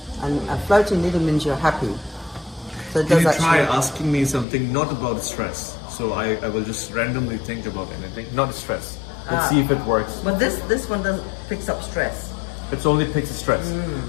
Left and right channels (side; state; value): right; drops out; at 4.5 s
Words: And a floating needle means you're happy. So it Can does you try actually. asking me something not about stress? So I will just randomly think about anything, not stress. Let's see if it works. But this one doesn't picks up stress. It's only picks stress.